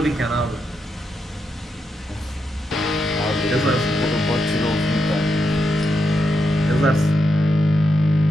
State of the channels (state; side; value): normal; both; correlation 0.84